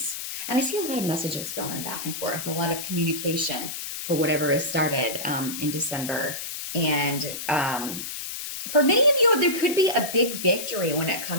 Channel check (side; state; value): left; noise; hiss, 6 dB below the sound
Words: And I see a lot of messages going back and forth, a lot of communication for whatever is started in December. And for many of you, there could be a big victory when it